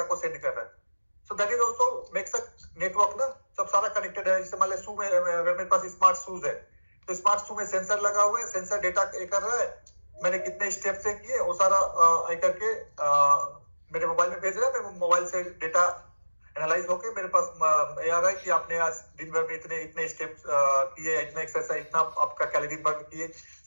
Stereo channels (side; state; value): both; inverted; correlation -1.00